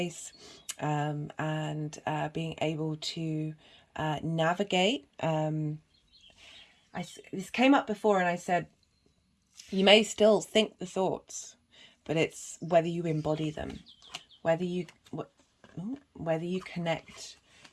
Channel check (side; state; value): both; identical; correlation 1.00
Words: and being able to navigate. This came up before, and I said you may still think the thoughts, but it's whether you embody them, whether you connect